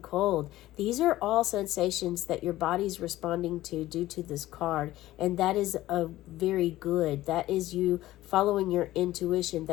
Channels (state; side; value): quieter; right; 15.9 dB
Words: These are all sensations that your body's responding to due to this card, and that is a very good. That is you following your intuition.